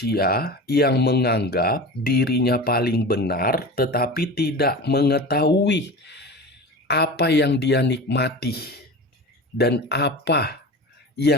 yang menganggap dirinya paling benar tetapi tidak mengetahui apa yang dia nikmati dan apa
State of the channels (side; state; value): both; normal; correlation 0.31